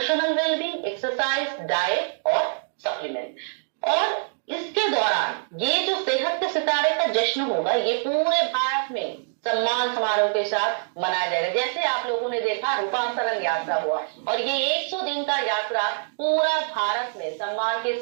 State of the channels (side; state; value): left; silent; digital silence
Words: wellbeing, exercise, diet और सप्लीमेंट। और इसके दौरान ये जो सेहत के सितारे का जश्न होगा, ये पूरे भारत में सम्मान समारोह के साथ मनाया जाएगा। जैसे आप लोगों ने देखा रूपांतरण यात्रा हुआ, और ये 100 दिन का यात्रा पूरा भारत में सम्मान